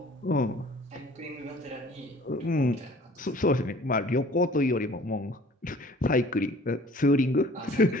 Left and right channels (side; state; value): both; normal; correlation 0.51